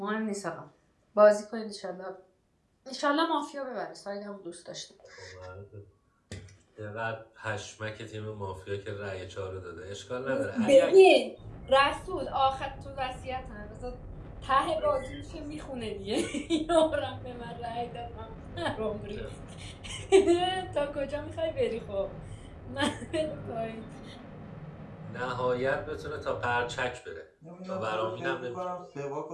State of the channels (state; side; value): identical; both; correlation 1.00